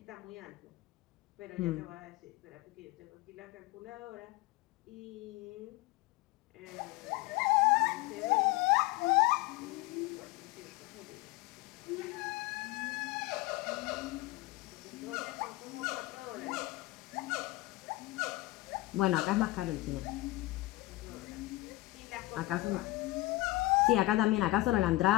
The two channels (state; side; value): quieter; right; 19.0 dB